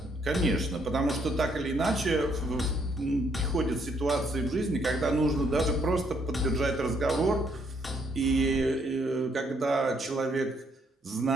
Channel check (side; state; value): both; normal; correlation 0.70